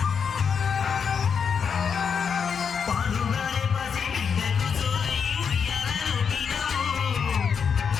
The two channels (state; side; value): quieter; right; 6.6 dB